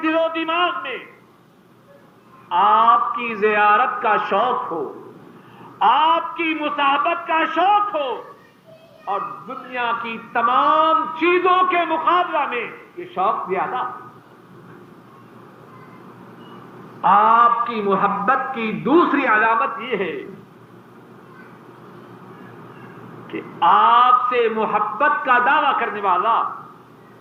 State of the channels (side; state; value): both; identical; correlation 1.00